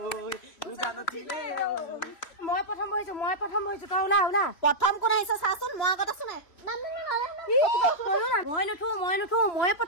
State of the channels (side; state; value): right; late; 3.1 ms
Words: উজান উঠিলে মই প্ৰথম বহিছো তই ওলা ওলা প্ৰথম কোন আহিছে চাচোন মই আগত আছো নাই মই নুঠো মই